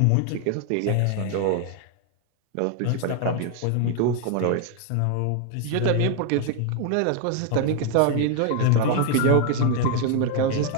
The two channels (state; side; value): different; both; correlation 0.00